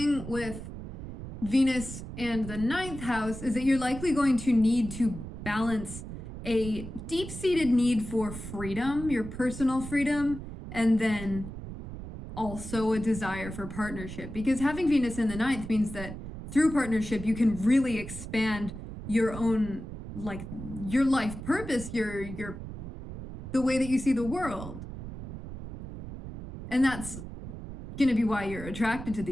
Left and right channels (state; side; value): noise; right; rumble, 10 dB below the sound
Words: with Venus and the 9th house is that you're likely going to need to balance a deep-seated need for freedom, your personal freedom, and then also a desire for partnership. Because having Venus in the 9th means that through partnership, you can really expand your own, like, your life purpose, your the way that you see the world. And that's going to be why you're attracted to